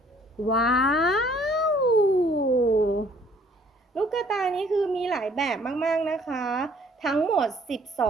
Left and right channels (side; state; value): both; normal; correlation 0.59